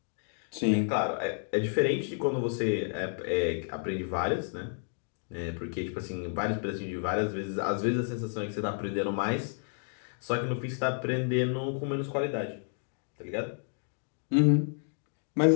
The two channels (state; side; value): silent; right; 57 dB below the other